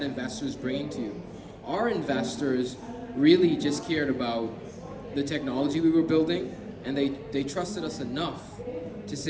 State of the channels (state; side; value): identical; both; correlation 1.00